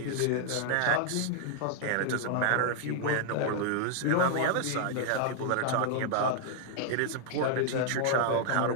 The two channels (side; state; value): both; different; correlation 0.00